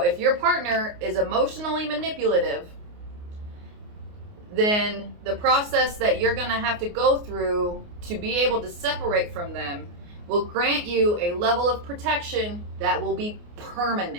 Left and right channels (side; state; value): left; late; 29 ms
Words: if your partner is emotionally manipulative, then the process that you're going to have to go through to be able to separate from them will grant you a level of protection that will be